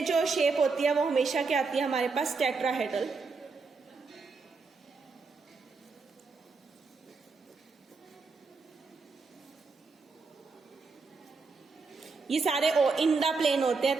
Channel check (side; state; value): left; quieter; 4.4 dB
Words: जो शेप होती है वो हमेशा क्या आती है हमारे पास, टेट्राहेड्रल। ये सारे इन द प्लेन होते हैं,